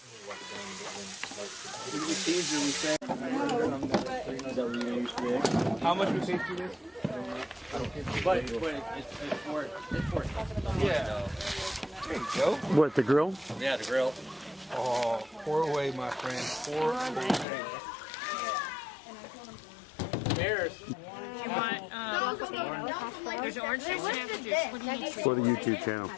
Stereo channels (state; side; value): drops out; right; at 17.4 s